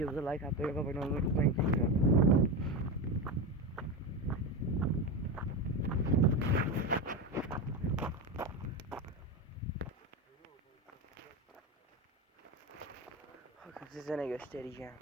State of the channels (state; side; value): normal; both; correlation 0.18